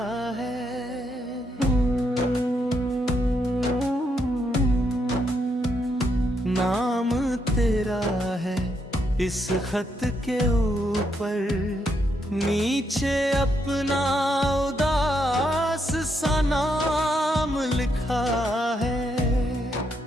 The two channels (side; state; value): both; normal; correlation 0.78